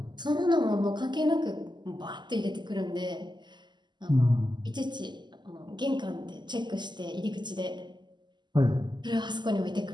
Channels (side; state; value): left; late; 0.21 ms